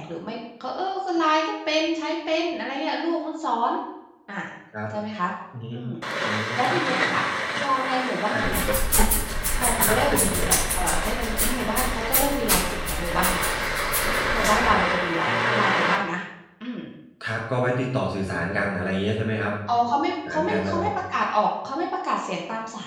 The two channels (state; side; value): identical; both; correlation 1.00